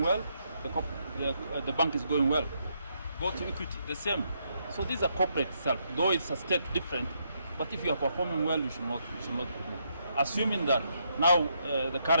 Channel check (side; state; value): both; inverted; correlation -0.76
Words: well, the bank is going well. Go to Equity, the same. So these are corporate self, though it's a state different, but if you are performing well, you should not be removed. Assuming that now the